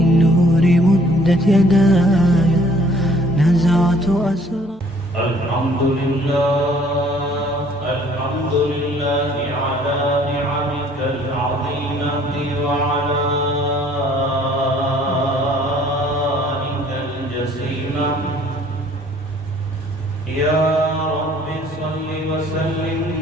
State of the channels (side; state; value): both; normal; correlation 0.58